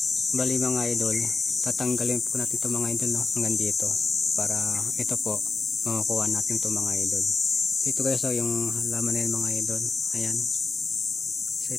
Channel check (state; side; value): quieter; right; 4.1 dB